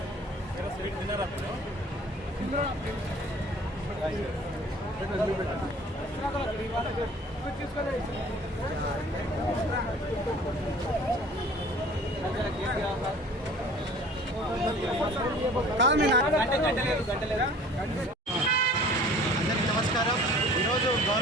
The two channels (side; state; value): both; normal; correlation 0.48